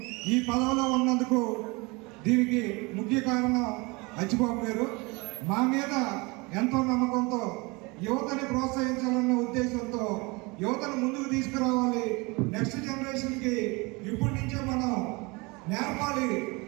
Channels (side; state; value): left; quieter; 26.4 dB